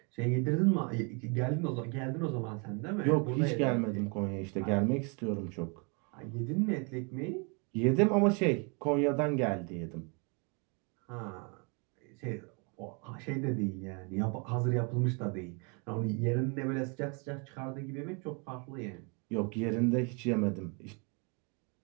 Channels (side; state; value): left; quieter; 33.9 dB